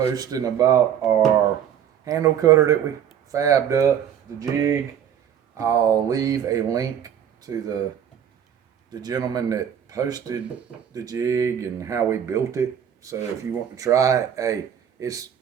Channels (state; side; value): quieter; left; 9.1 dB